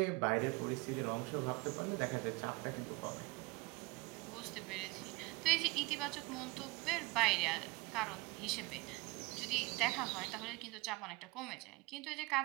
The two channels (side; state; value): left; quieter; 24.1 dB